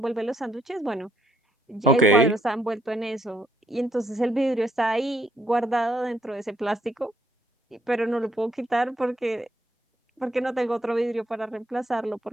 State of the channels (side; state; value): both; normal; correlation 0.71